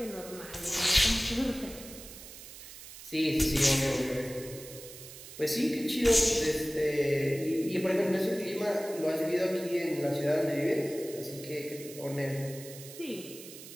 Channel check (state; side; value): noise; right; hiss, 15 dB below the sound